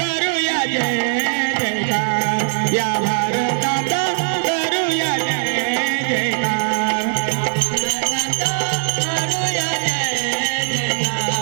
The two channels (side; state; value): left; silent; digital silence